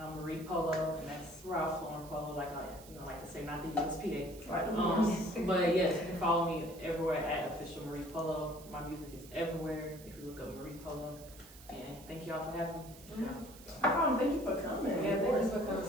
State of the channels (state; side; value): noise; right; hiss, 19 dB below the sound